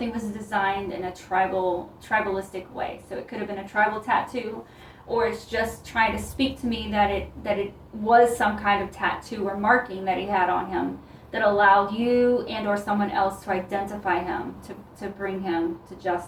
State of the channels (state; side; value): identical; both; correlation 1.00